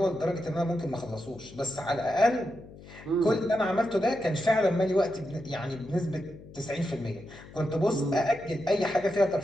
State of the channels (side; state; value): left; noise; hum, 18 dB below the sound